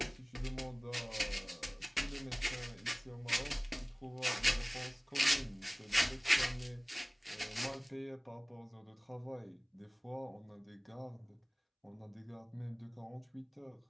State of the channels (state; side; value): identical; both; correlation 1.00